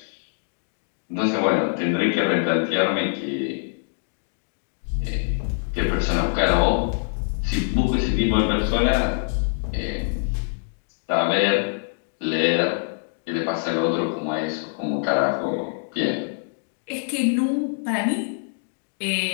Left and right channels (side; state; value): right; silent; digital silence